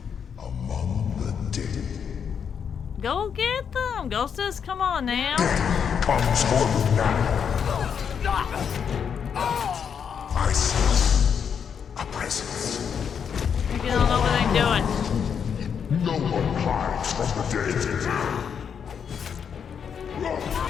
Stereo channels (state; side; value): quieter; right; 7.3 dB